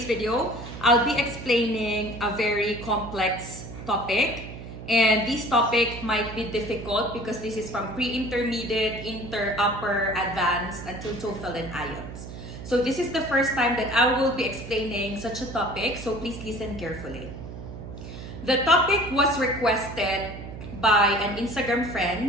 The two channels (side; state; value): right; noise; hum, 11 dB below the sound